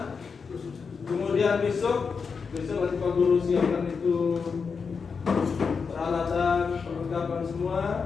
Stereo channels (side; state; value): right; quieter; 5.5 dB